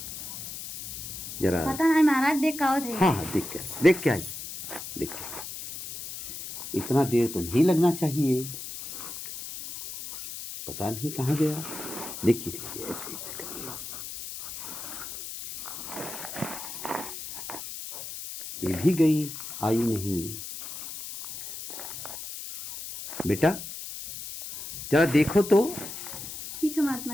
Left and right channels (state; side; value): noise; left; hiss, 9 dB below the sound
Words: जरा पता नहीं महाराज देख का थे। हाँ हाँ देख के आइए, देख के। इतना देर तो नहीं लगना चाहिए, पता नहीं कहाँ गया। देखिए देखिए ऐसे ऐसे करिए। ये भी गई, आई नहीं। बेटा जरा देखो तो। ठीक है महात्मा